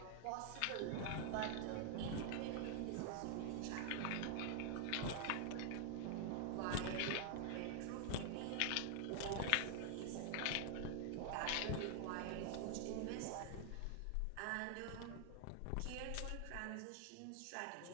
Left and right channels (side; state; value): both; different; correlation 0.00